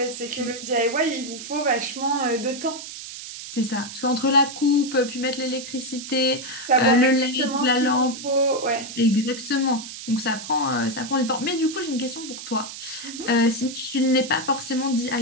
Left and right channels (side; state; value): right; noise; hiss, 11 dB below the sound